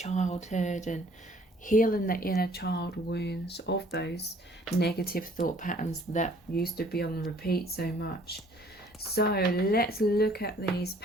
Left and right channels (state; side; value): normal; both; correlation 0.57